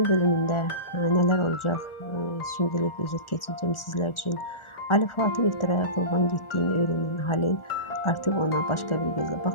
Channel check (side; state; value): right; late; 1.4 ms